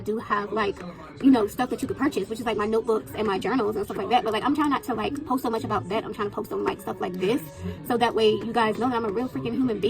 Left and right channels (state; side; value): identical; both; correlation 1.00